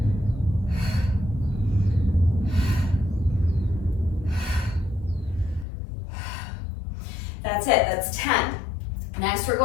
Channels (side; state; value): right; drops out; at 5.7 s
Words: That's it, that's 10. Next, we're